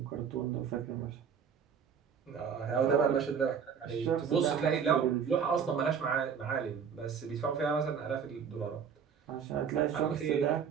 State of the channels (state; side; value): quieter; left; 7.0 dB